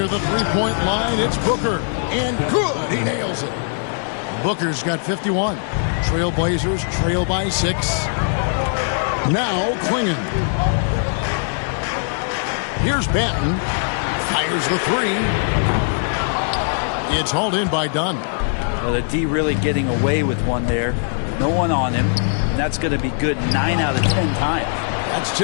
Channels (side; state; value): right; silent; 66 dB below the other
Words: the three-point line, it's Booker. And good! He nails it. Booker's got 51. Trailblazers trail by 6. Now Clingan. Here's Banton. Fires the three. It's hauled in by Dunn. Well, the D really getting away with one there. No one on him. That's going to be good 9 out of 10 times. That's